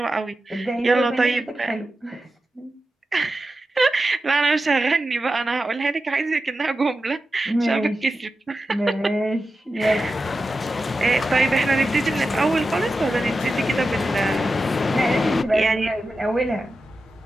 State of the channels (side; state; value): both; normal; correlation 0.92